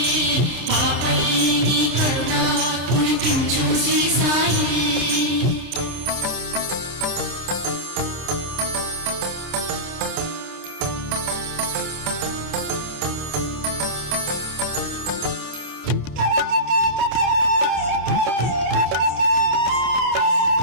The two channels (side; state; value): left; late; 26 ms